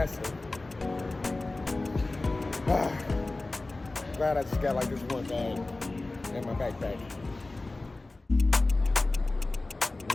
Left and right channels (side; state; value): right; quieter; 3.1 dB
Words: Glad I just got like this one bag in my backpack.